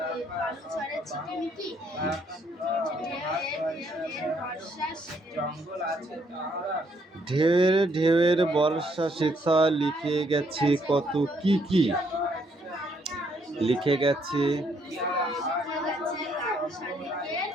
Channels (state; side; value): normal; both; correlation 0.71